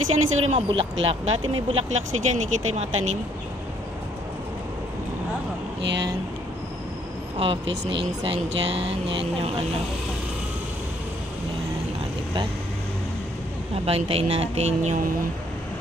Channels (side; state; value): both; normal; correlation 0.66